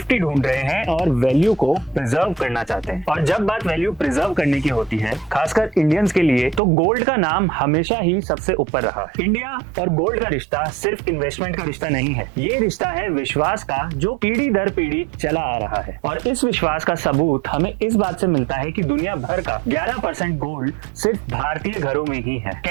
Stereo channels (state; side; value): drops out; left; at 6.6 s